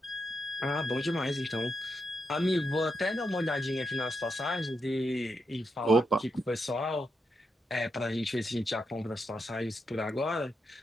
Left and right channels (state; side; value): normal; both; correlation 0.84